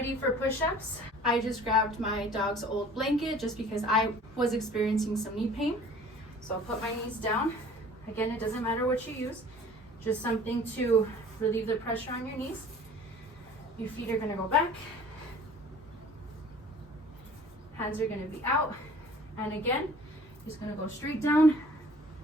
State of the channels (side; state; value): both; normal; correlation 0.49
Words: for push-ups, I just grabbed my dog's old blanket just because I was experiencing some knee pain. So I'll put my knees down. Again, it doesn't matter what you use, just something to relieve the pressure on your knees. Your feet are gonna go back. Hands are gonna be out. And again, just gonna go straight down